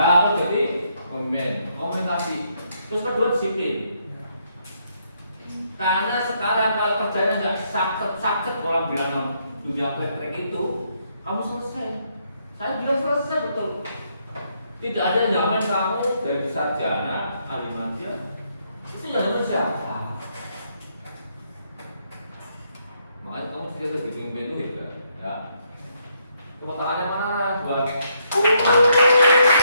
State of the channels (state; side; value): inverted; both; correlation -0.75